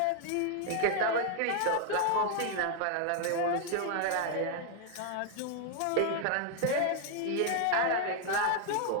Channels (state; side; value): different; both; correlation 0.00